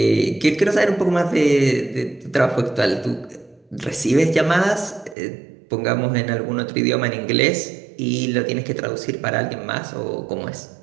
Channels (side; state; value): left; drops out; at 5.2 s